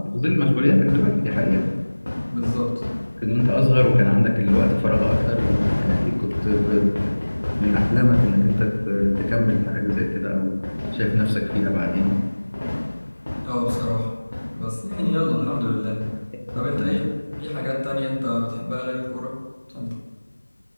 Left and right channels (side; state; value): both; inverted; correlation -1.00